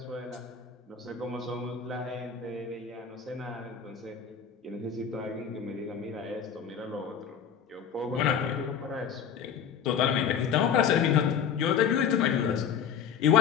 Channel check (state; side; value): quieter; right; 7.6 dB